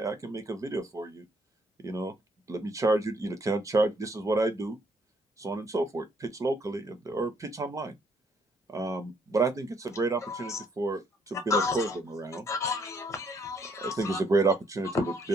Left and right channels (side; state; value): both; normal; correlation 0.68